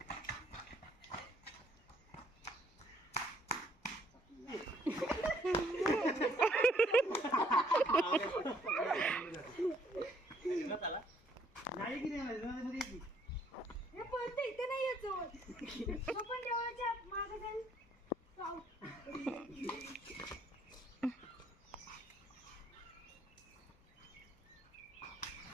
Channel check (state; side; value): normal; both; correlation 0.64